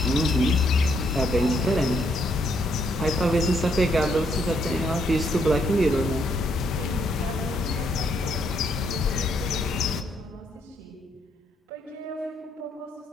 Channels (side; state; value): both; normal; correlation 0.73